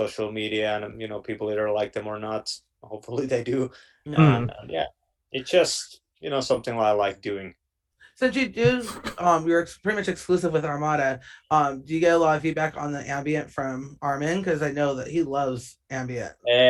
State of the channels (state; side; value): identical; both; correlation 1.00